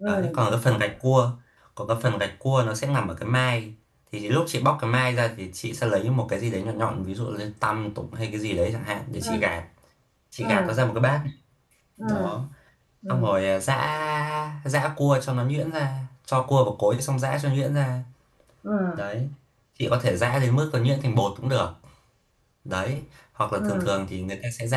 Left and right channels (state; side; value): identical; both; correlation 1.00